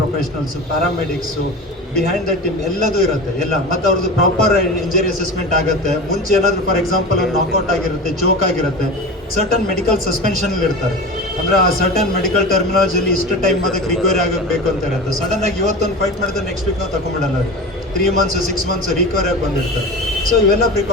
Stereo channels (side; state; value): both; normal; correlation 0.30